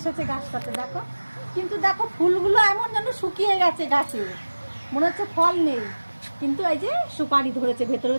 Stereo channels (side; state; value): both; inverted; correlation -1.00